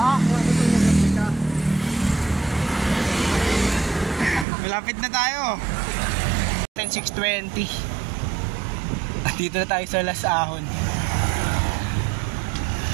Bakit na nabututan ka? Malapit na tayo. 6:20. Dito na tayo sa Las Ahon.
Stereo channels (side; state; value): left; drops out; at 4.5 s